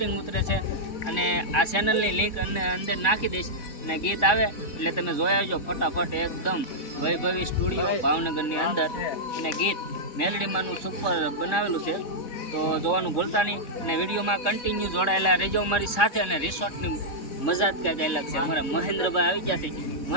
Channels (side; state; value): right; late; 3.6 ms